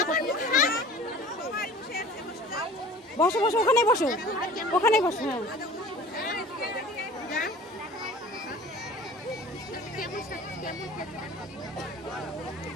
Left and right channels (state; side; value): normal; both; correlation 0.44